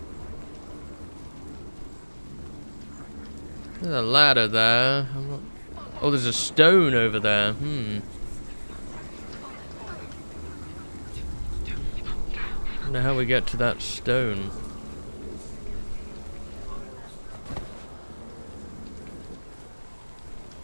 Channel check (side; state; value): both; inverted; correlation -1.00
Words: There's a ladder there. Oh, there's a stone over there. Wonder how we get to that stone.